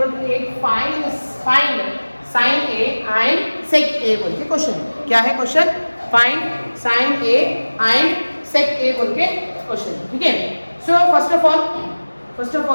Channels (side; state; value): both; inverted; correlation -1.00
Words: to 8, find sin A and sec A बोल के क्वेश्चन. क्या है question? Find sin A and sec A बोल के क्वेश्चन. ठीक है, so first of